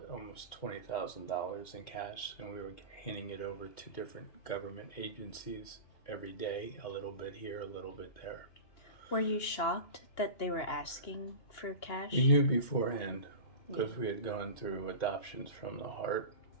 almost $20,000 in cash, and we were handing it over to different government agencies every day, a little bit here, a little bit there. Were you shocked that they were asking for cash? We knew beforehand because we had gone through adoptions from the heart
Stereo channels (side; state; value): right; late; 2.8 ms